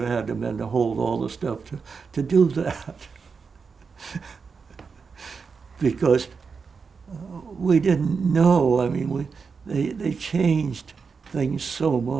had to been to hold all the stuff to do that. Because we didn't know. I mean, they changed things so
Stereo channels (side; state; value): left; quieter; 5.3 dB